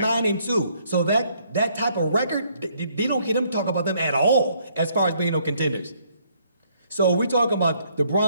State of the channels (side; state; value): both; inverted; correlation -0.68